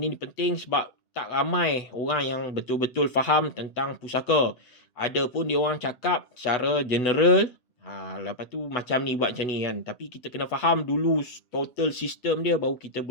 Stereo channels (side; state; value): right; late; 8.1 ms